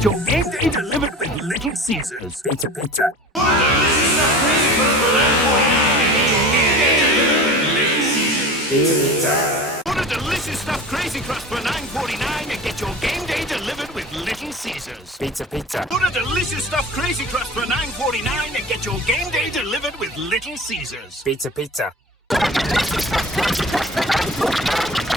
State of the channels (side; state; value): both; normal; correlation 0.36